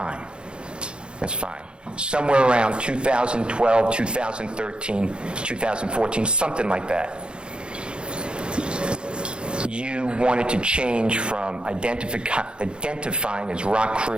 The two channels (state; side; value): late; left; 0.053 ms